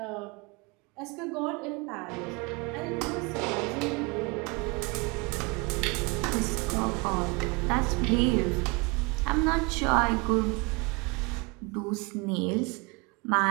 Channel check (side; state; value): left; quieter; 28.7 dB